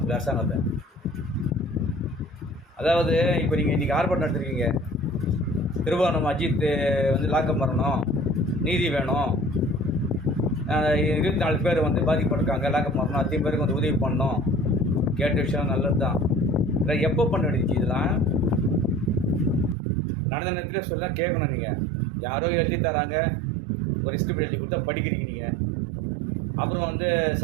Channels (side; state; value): left; drops out; at 19.8 s